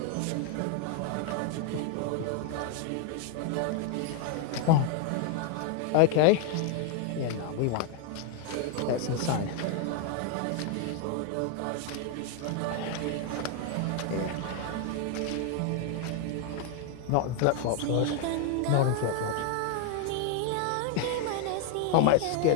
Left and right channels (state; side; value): different; both; correlation 0.00